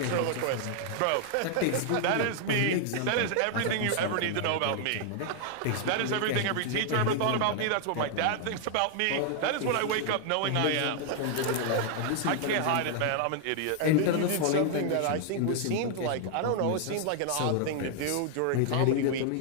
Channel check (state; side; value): different; both; correlation 0.00